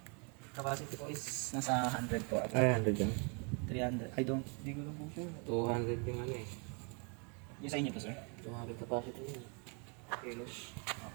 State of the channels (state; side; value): quieter; left; 35.3 dB